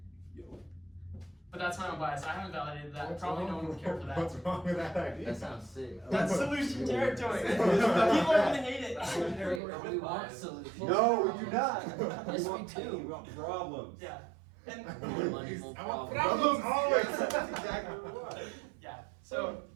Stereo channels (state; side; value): drops out; left; at 9.6 s